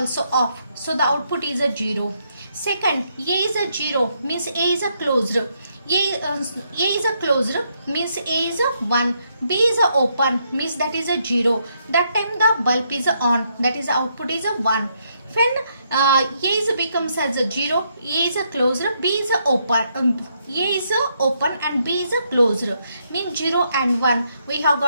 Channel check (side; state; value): both; inverted; correlation -0.75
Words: off. So the output is a 0. Second, A is a 0 means A is a closed. A is a closed means A is a 1. B is a open means that is a 0. That time the bulb is on, that is the output is a 1. When A is becomes as a 0, A is a closed, B is a open. A is a open and B is a closed. Means 0 and 1. We have